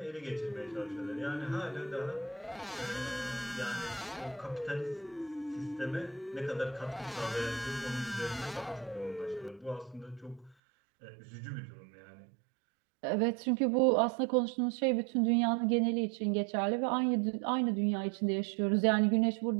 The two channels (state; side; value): drops out; left; at 10.6 s